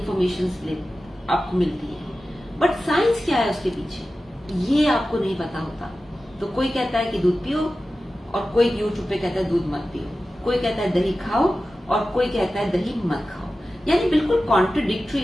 आपको मिलती है, बट साइंस क्या है उसके पीछे ये आपको नहीं पता होता। तो कोई कहता है कि दूध पियो और कोई यूट्यूब पे कहता है दूध मत पियो, कोई कहता है दही खाओ और कोई कहता है दही मत खाओ, यानी बिल्कुल कॉन्ट्रडिक्टरी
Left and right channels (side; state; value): both; normal; correlation 0.94